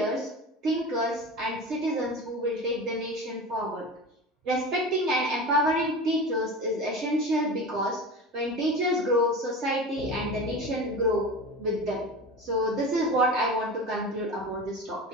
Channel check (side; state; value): both; normal; correlation 0.30